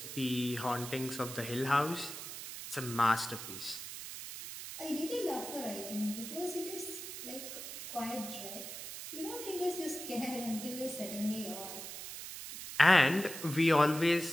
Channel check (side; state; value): right; noise; hiss, 9 dB below the sound